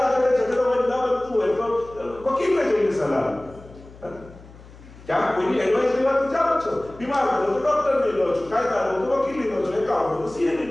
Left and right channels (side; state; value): left; noise; hum, 20 dB below the sound